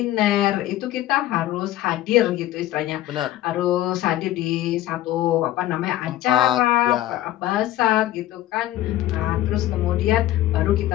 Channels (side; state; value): right; quieter; 14.4 dB